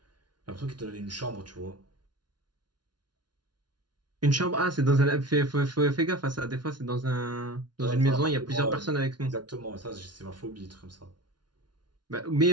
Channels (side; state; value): left; late; 0.70 ms